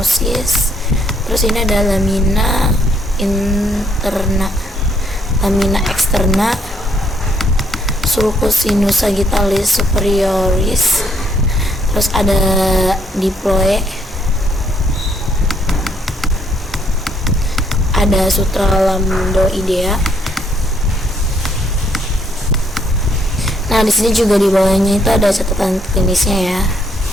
Terus ini ada lamina interna, lamina externa, sulcus sinus sagittalis superioris. Terus ada diploe, ada sutra lambdoidea. Nah, di sini juga di bawahnya itu ada catatan klinisnya ya.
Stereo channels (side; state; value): both; normal; correlation 0.70